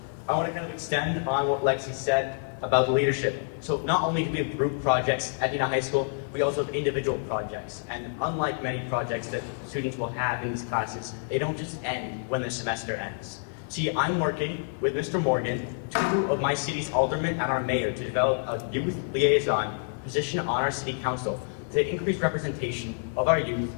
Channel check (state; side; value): silent; right; 59 dB below the other